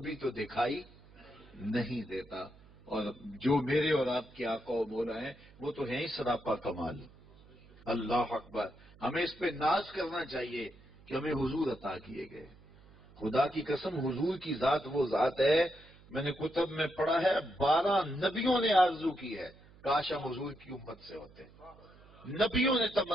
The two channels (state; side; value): noise; right; hum, 24 dB below the sound